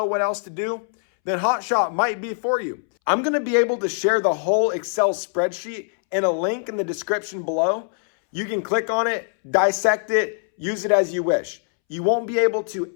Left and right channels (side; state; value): right; silent; 64 dB below the other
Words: what else to do, then Hotshot might be for you. I'm gonna be able to share the whole Excel spreadsheet in a link in the description below. You can click on it, dissect it, use it as you wish. You won't be able to